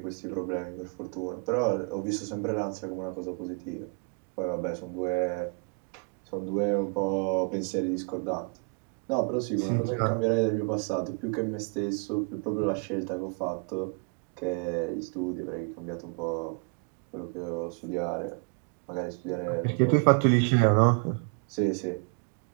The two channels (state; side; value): quieter; left; 37.2 dB